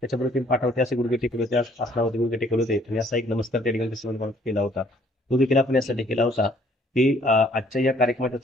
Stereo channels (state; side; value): normal; both; correlation 0.61